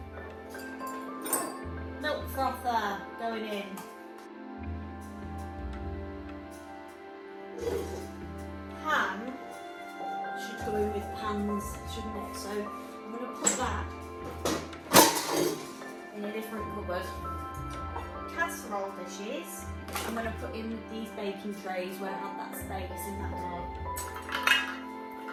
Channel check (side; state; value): both; identical; correlation 1.00